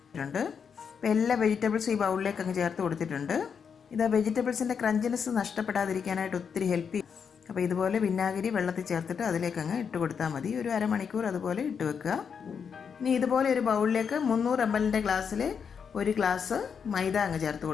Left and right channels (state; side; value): quieter; right; 6.7 dB